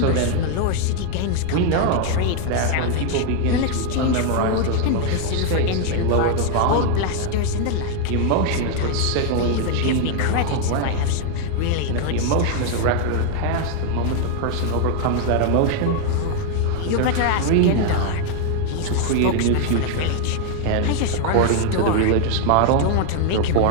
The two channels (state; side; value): different; both; correlation 0.00